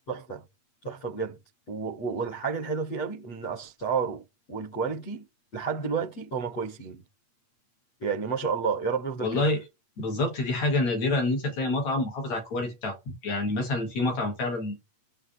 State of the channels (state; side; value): late; right; 8.5 ms